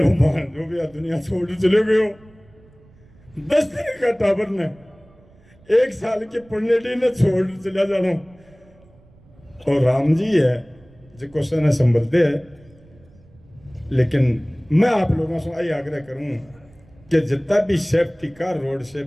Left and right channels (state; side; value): noise; right; rumble, 27 dB below the sound